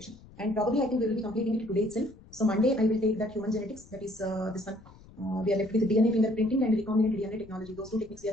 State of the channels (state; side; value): noise; left; rumble, 22 dB below the sound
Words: and probably I think we will be completing it today itself. So Monday I will take that human genetics, that is this one. We are left with DNA fingerprinting and recombinant DNA technology. Those two techniques we